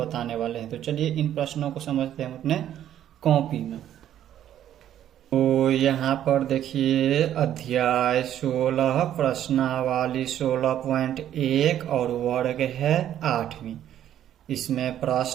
वाले हैं। तो चलिए इन प्रश्नों को समझते हैं हम अपने कॉपी में। तो यहाँ पर देखिए अध्याय 16 प्रश्नावली 16.1 और वर्ग है 8वीं। इसमें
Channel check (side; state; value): left; quieter; 11.1 dB